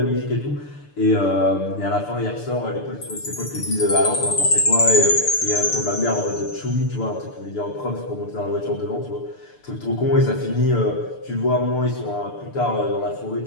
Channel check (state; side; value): late; right; 6.8 ms